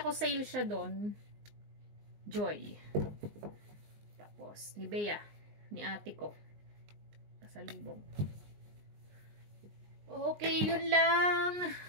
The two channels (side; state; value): left; late; 19 ms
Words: ko sale siya doon. Joy. Tapos, ni Bea. Ni ate ko. Kasalubong. Okay, yun lang.